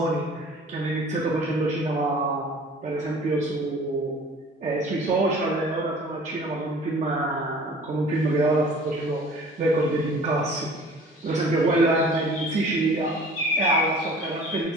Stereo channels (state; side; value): normal; both; correlation 0.47